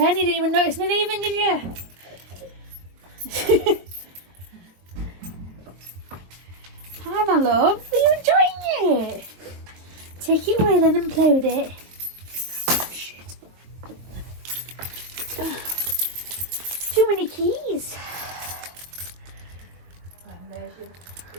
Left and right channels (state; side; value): late; left; 23 ms